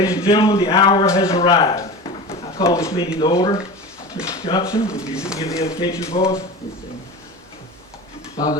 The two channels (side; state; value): both; normal; correlation 0.31